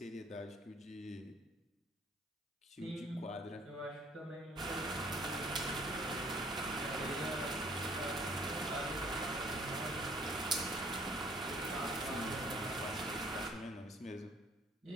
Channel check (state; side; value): normal; both; correlation 0.58